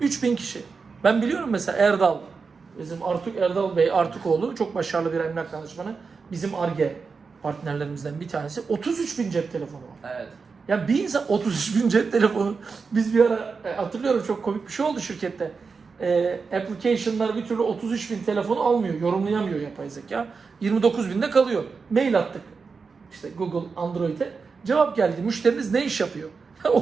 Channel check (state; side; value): quieter; left; 4.9 dB